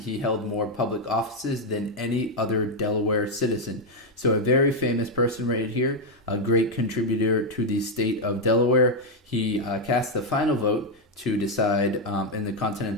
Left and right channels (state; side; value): normal; both; correlation 0.03